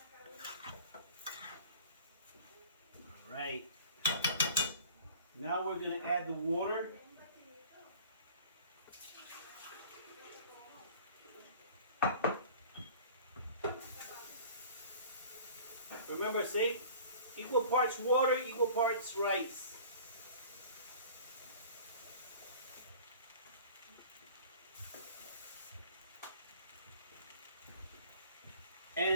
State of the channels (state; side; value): inverted; both; correlation -0.45